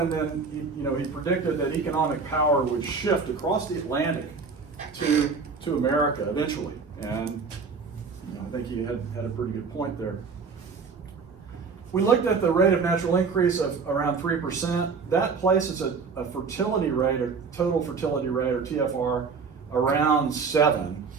then, he predicted that economic power would shift across the Atlantic to America eventually. And I think he had a pretty good point there. We looked at the rate of natural increase of around 3%. That places a fertility rate, a total fertility rate, or TFR, around 7.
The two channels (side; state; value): left; quieter; 5.0 dB